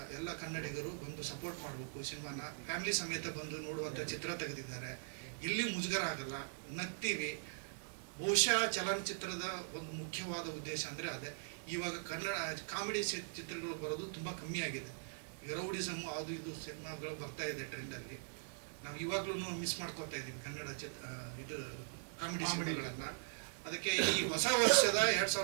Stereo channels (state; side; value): silent; left; digital silence